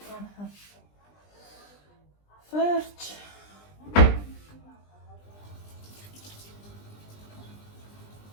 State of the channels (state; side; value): late; right; 20 ms